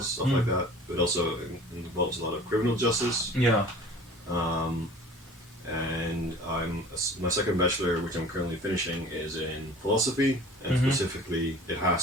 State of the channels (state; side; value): normal; both; correlation 0.45